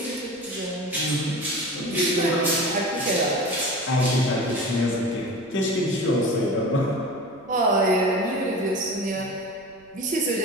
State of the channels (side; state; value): right; noise; rumble, 29 dB below the sound